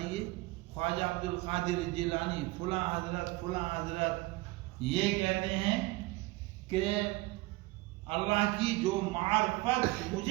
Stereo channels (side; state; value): left; quieter; 21.2 dB